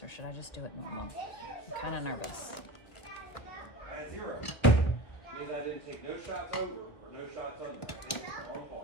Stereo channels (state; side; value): late; right; 1.4 ms